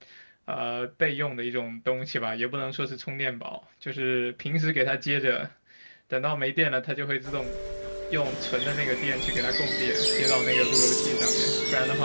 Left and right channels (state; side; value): inverted; both; correlation -1.00